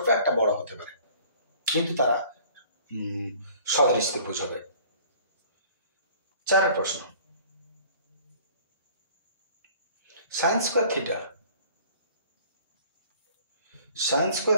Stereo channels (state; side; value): inverted; both; correlation -0.51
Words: একটা বড় হতে পারে, কিন্তু তারা সদৃশ ত্রিভুজ হবে। 4 প্রশ্ন, sine square theta, sine square